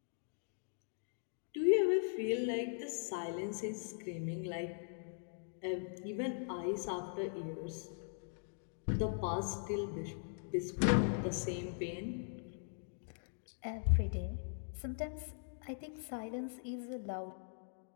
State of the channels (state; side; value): silent; right; digital silence